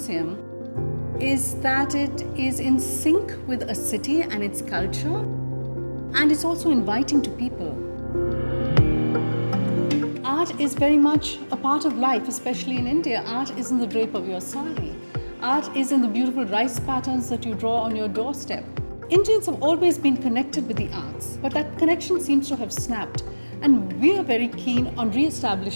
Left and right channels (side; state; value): both; inverted; correlation -1.00